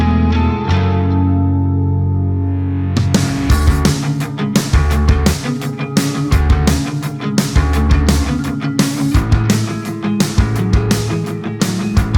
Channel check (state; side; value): identical; both; correlation 1.00